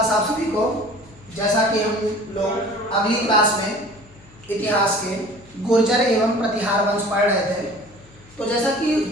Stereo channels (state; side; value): noise; left; hum, 25 dB below the sound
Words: आप सभी को। जैसा कि हम लोग अगली क्लास में इतिहास के गुर्जर एवं प्रतिहार वंश पढ़ रहे थे, तो जैसा कि